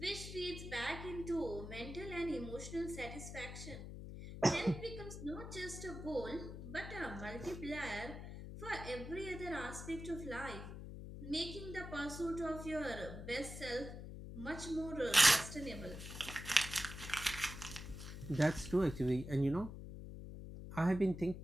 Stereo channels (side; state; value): left; noise; hum, 9 dB below the sound